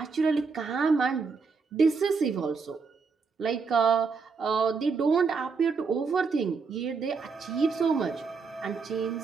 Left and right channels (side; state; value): left; quieter; 5.0 dB